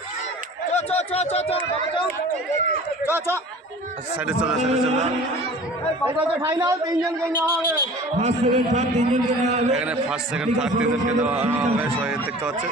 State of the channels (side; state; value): both; normal; correlation 0.43